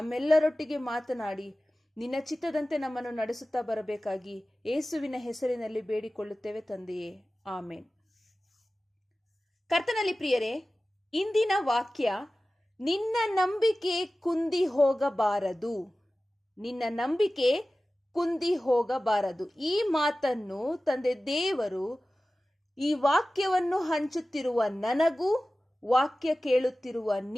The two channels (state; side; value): normal; both; correlation 0.96